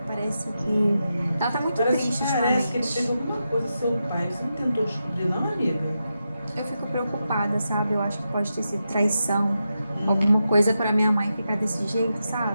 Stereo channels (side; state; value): both; inverted; correlation -0.88